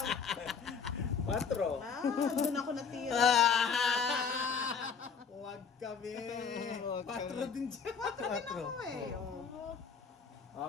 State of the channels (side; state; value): right; quieter; 6.1 dB